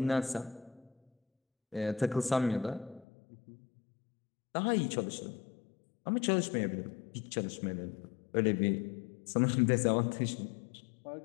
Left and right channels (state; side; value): drops out; right; at 3.1 s